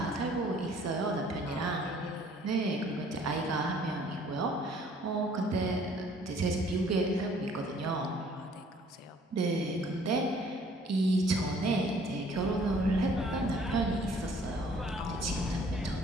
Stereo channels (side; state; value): both; normal; correlation 0.57